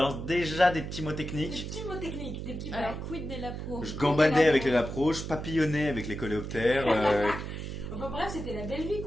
déjà des petits mots techniques. Des petits mots techniques, des petits Alors, quid des lapros? Je gambadais avec les lapros, je papillonnais avec les coléoptères. Enfin bref, c'était la belle vie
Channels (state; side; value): noise; right; hum, 7 dB below the sound